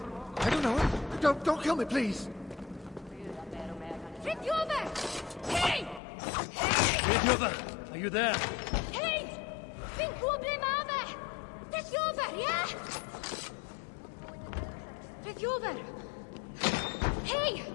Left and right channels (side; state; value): right; drops out; at 6.0 s